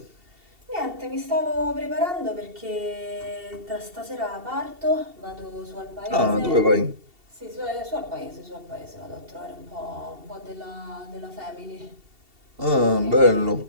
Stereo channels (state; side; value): late; left; 2.7 ms